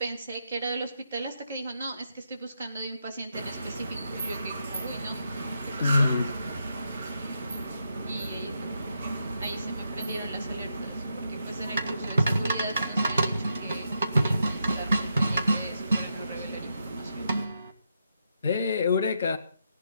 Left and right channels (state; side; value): inverted; both; correlation -0.82